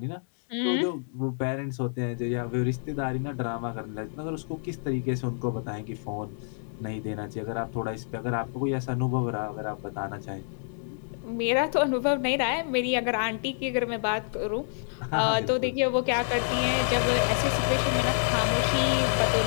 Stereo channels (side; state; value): right; silent; digital silence